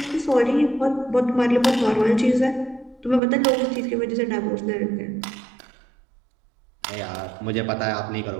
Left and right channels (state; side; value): drops out; left; at 3.2 s